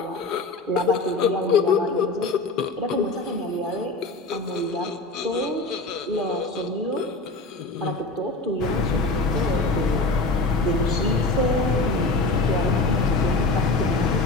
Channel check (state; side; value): quieter; right; 3.3 dB